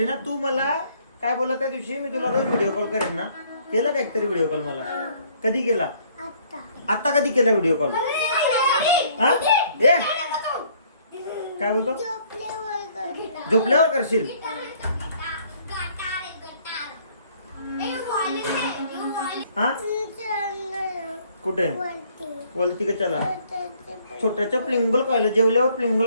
ना. तू मला काय बोला त्या दिवशी मी तुला रोज व्हिडिओ कॉल करेन ना. केला का एकतरी व्हिडिओ कॉल मला. कधी केला. आता कधी केला व्हिडिओ कॉल. हा ए काय बोलतो. झोपल्यावर करशील. हा कुठे वलती का. चला छोट्याच्या प्लिंगल खायला. जेवल्यावर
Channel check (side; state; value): both; inverted; correlation -0.62